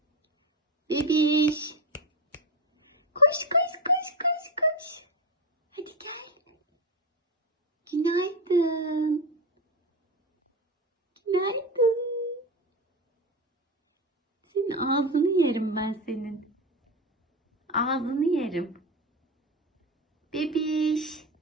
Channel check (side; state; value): both; normal; correlation 0.17